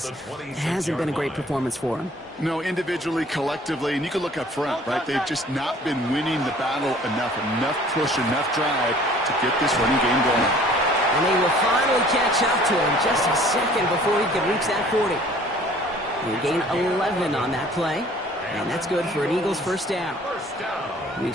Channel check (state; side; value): normal; both; correlation 0.53